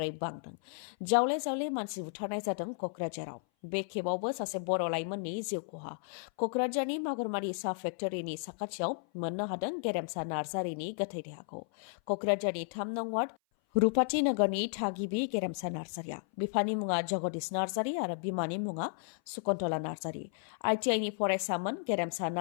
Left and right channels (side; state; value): right; silent; 55 dB below the other